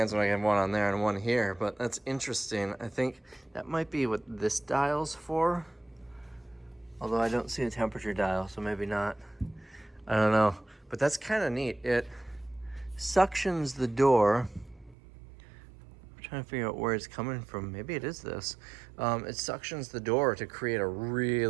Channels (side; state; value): left; drops out; at 15.0 s